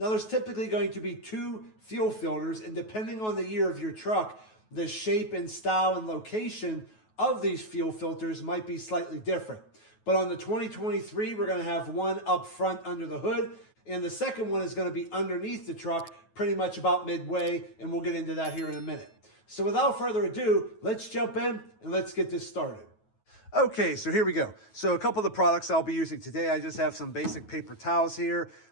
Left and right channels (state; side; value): late; right; 9.3 ms